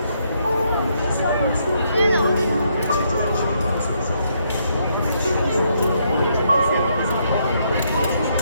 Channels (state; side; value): inverted; both; correlation -0.74